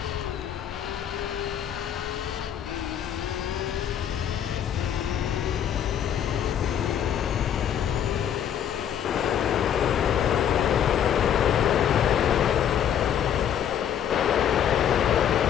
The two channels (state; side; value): quieter; right; 9.4 dB